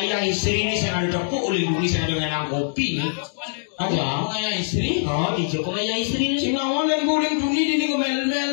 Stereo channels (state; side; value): silent; right; digital silence